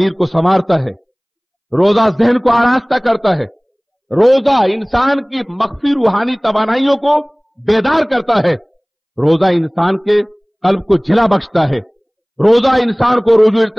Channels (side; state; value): both; identical; correlation 1.00